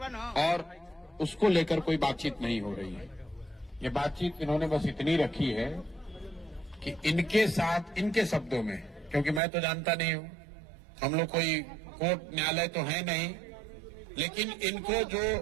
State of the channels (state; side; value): drops out; left; at 9.4 s